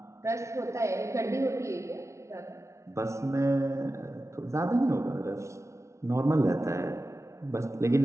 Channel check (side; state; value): left; late; 0.14 ms